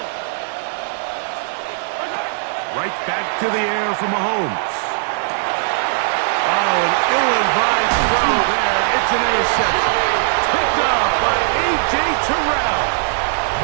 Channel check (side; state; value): left; silent; digital silence